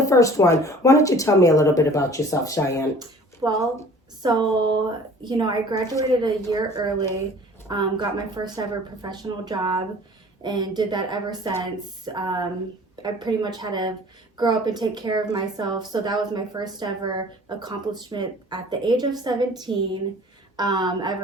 first one, why don't you tell me a little bit about yourself, Cheyenne? I graduated a year early, got my first ever professional job, and did that ever since. I pretty much had to grow up and take care of myself, so that was my first ever accomplishment at the age of 17.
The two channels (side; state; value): both; normal; correlation 0.48